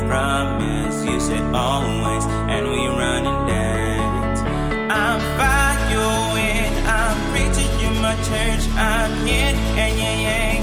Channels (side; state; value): both; identical; correlation 1.00